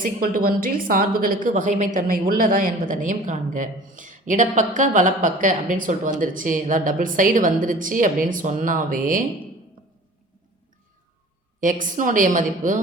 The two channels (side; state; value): both; normal; correlation 0.44